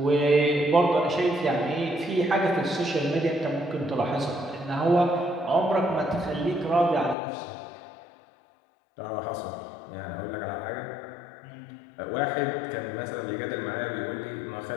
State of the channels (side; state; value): right; drops out; at 7.2 s